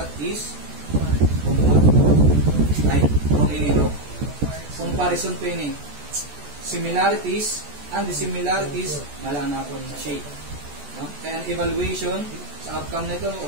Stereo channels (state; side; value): late; left; 14 ms